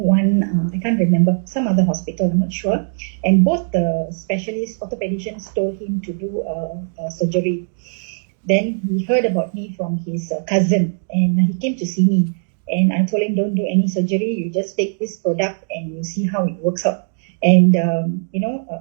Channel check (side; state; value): left; silent; digital silence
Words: I can't remember, some other hospital, I'm not sure. And both the specialists, orthopedicians, told him to do surgery. Then he heard about me from his cousin, and he came to see me. And I told him, don't do any surgery. You just take this product and you see how it works out. And,